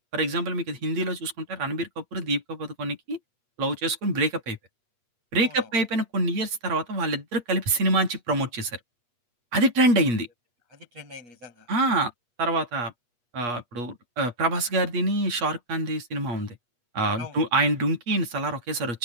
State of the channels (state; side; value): late; left; 8.4 ms